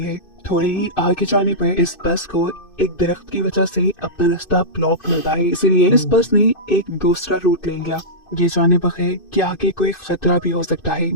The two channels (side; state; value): right; late; 2.6 ms